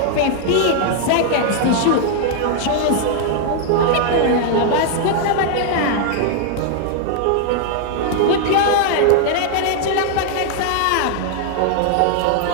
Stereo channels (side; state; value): both; different; correlation 0.00